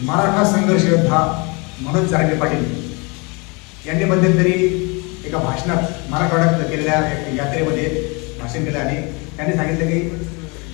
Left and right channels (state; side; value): quieter; right; 29.6 dB